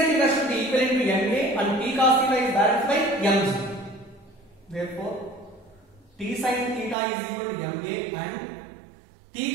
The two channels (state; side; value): drops out; left; at 7.0 s